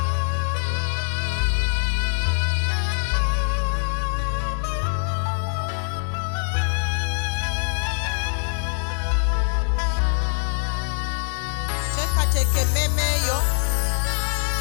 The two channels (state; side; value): silent; right; 63 dB below the other